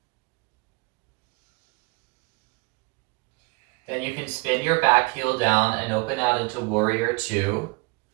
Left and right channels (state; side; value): quieter; left; 28.5 dB